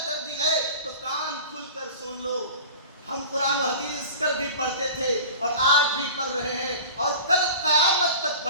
گردی ہے، تو کان کھل کر سن لو۔ ہم قرآن و حدیث کل بھی پڑھتے تھے اور آج بھی پڑھ رہے ہیں اور کل قیامت تک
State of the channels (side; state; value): both; inverted; correlation -0.38